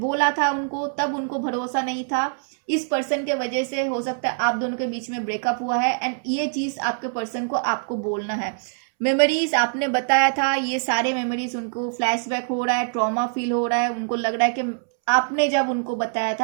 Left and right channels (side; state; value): left; silent; 63 dB below the other